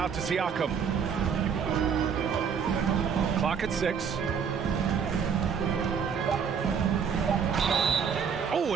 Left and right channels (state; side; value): quieter; left; 6.8 dB